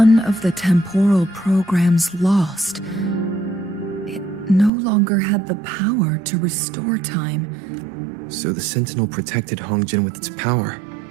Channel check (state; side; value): drops out; left; at 4.7 s